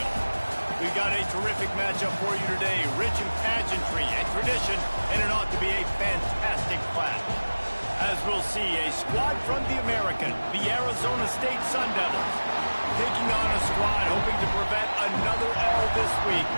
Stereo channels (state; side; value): inverted; both; correlation -1.00